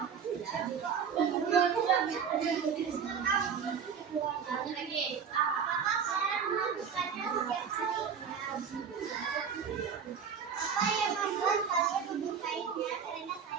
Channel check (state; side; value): quieter; left; 6.9 dB